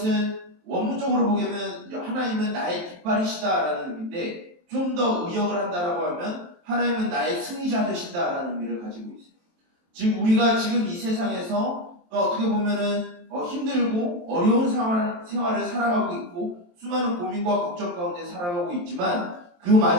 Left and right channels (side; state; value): left; late; 23 ms